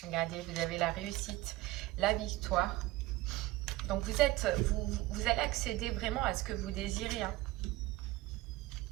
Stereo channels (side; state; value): left; quieter; 17.7 dB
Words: Regardez, vous avez la réussite, la victoire. Donc vous allez accéder vraiment à ce que vous désirez. Hein.